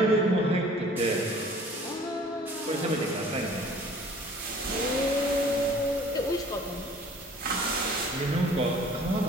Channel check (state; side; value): normal; both; correlation 0.51